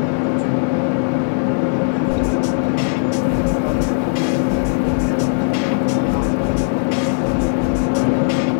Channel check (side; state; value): right; silent; digital silence